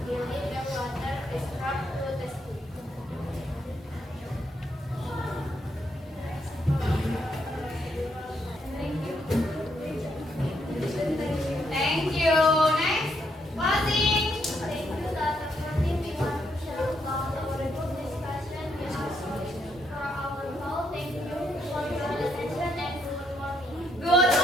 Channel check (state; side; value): normal; both; correlation 0.76